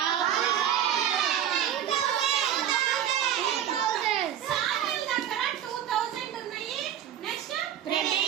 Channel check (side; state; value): left; quieter; 10.2 dB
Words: శామ్యూల్ దగ్గర 2,000 ఉన్నాయి. నెక్స్ట్